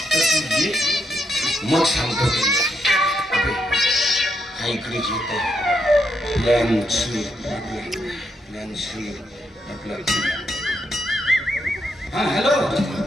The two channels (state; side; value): normal; both; correlation 0.80